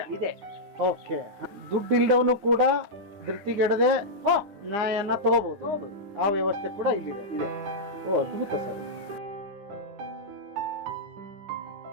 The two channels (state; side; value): late; left; 9.8 ms